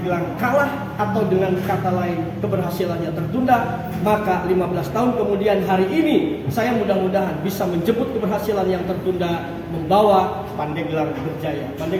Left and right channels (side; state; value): both; identical; correlation 1.00